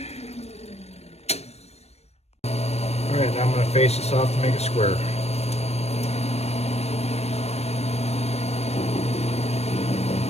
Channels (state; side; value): late; right; 0.31 ms